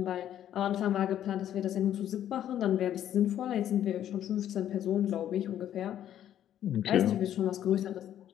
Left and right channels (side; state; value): right; quieter; 11.0 dB